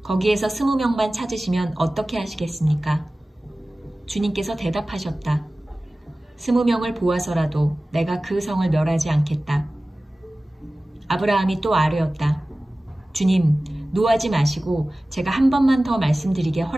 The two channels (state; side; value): normal; both; correlation 0.97